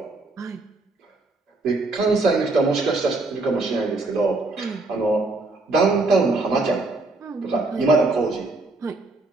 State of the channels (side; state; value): left; quieter; 3.2 dB